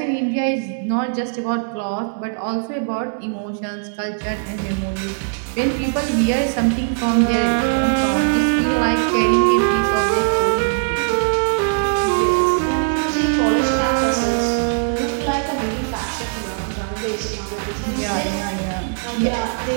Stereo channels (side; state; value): left; silent; digital silence